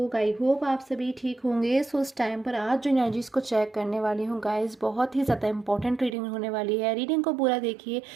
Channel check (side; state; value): left; drops out; at 6.2 s